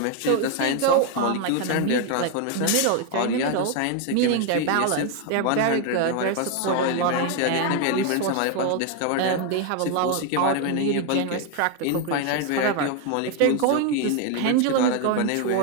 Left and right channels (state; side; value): different; both; correlation 0.01